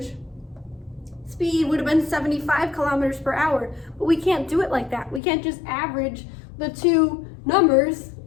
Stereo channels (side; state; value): right; drops out; at 5.2 s